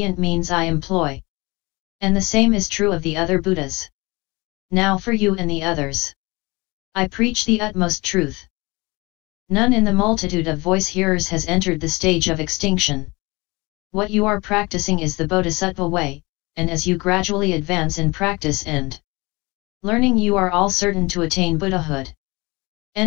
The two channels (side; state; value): right; quieter; 24.4 dB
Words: means I employ. And the same is true of the other Buddhas. Now for you and the others, I preach the utmost truth. None in the multitude of voice hearers has entered the stage of extinction. What you are practicing is the Bodhisattva way, and as you gradually advance in practice and learning, you are all certain to attain Buddhahood.